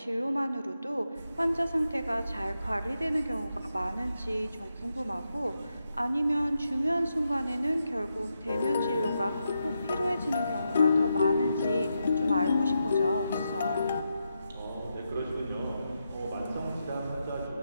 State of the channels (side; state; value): both; inverted; correlation -0.85